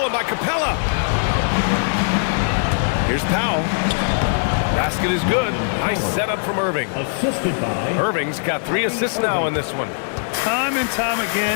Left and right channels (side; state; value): right; silent; digital silence